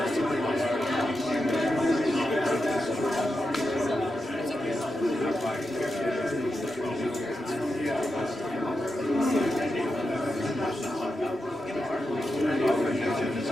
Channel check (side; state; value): both; normal; correlation 0.88